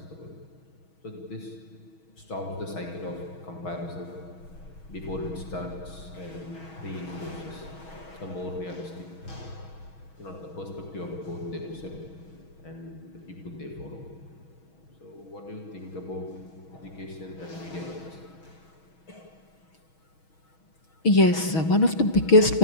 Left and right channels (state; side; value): late; right; 6.3 ms